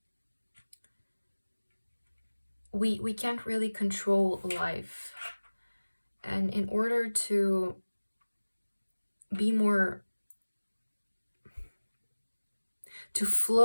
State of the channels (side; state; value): both; inverted; correlation -1.00